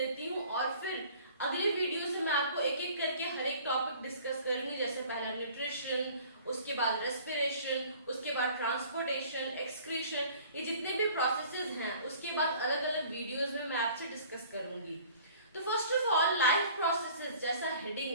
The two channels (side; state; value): both; inverted; correlation -0.50